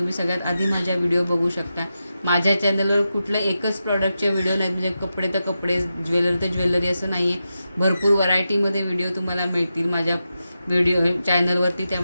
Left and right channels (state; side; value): inverted; both; correlation -0.89